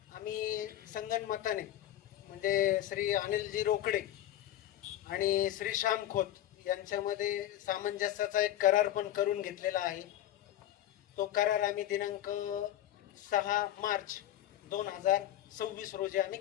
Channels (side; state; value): right; quieter; 12.6 dB